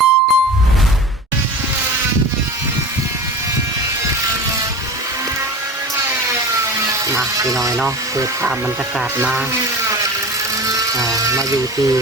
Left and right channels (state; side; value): normal; both; correlation 0.33